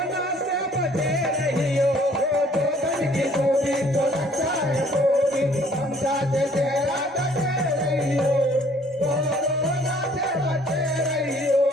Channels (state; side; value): normal; both; correlation 0.58